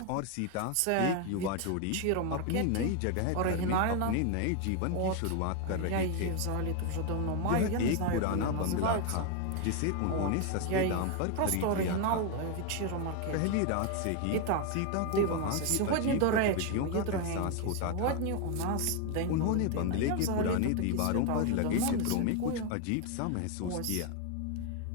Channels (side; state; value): both; different; correlation 0.01